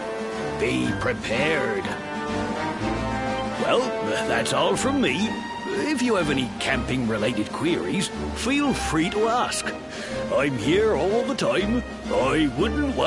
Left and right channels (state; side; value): identical; both; correlation 1.00